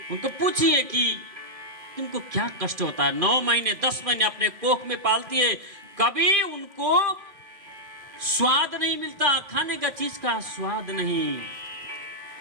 उनको पूछिए कि तुमको क्या कष्ट होता है। 9 महीने 10 महीने अपने कोख में पालती है, कभी उनको स्वाद नहीं मिलता, खाने का चीज का स्वाद नहीं,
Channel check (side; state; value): left; late; 2.4 ms